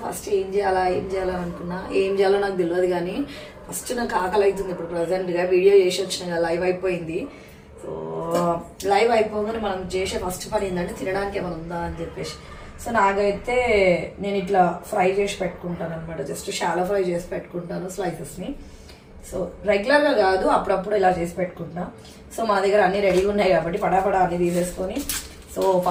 ఫస్ట్ ఏం చేయాలని అనుకున్నా, ఏం చేయాలో నాకు తెలియదు. కానీ ఫస్ట్ నాకు ఆకలి అవుతుంది. ఇప్పుడు ప్రజెంట్గా వీడియో చేసి వచ్చిన లైవ్ అయిపోయింది. సో లైవ్ అయిపోగానే మనం చేసే ఫస్ట్ పని ఏంటంటే తినడానికి ఏమైనా ఉందా అని చెప్పేసి. సో నాకైతే నేను ఇట్లా ఫ్రై చేసి పెట్టుకుంటాను అనమాట. జస్ట్ షాలో ఫ్రై చేసి పెట్టుకుంటాను స్లైసెస్ని. సో రెగ్యులర్గా కాదు, అప్పుడప్పుడు ఇలా చేసి పెట్టుకుంటా. సో మా దగ్గర అన్నీ రెడీగా ఉన్నాయి కాబట్టి పడాపడా అన్నీ తీసేసుకొని, సో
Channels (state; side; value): identical; both; correlation 1.00